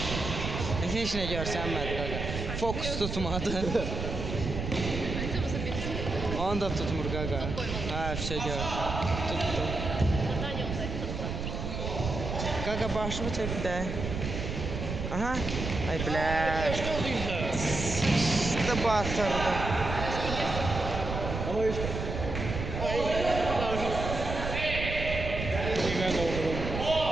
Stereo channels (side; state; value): right; noise; rumble, 4 dB below the sound